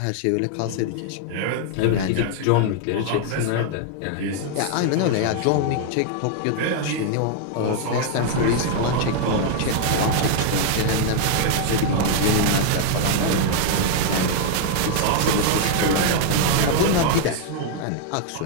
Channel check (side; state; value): both; different; correlation 0.00